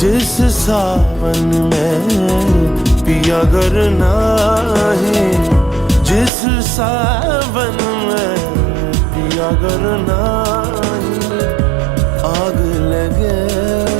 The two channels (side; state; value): left; drops out; at 6.3 s